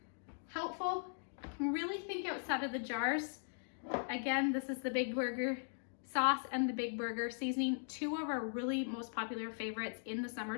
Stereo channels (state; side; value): silent; right; digital silence